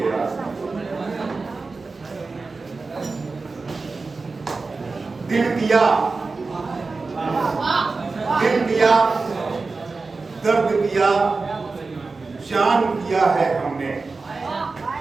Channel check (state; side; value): quieter; left; 4.0 dB